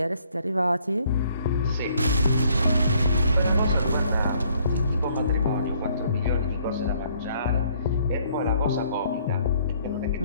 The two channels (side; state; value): both; inverted; correlation -0.64